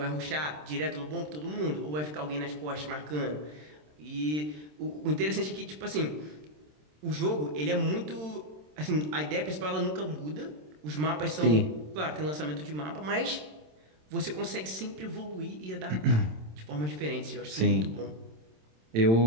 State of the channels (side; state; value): left; late; 27 ms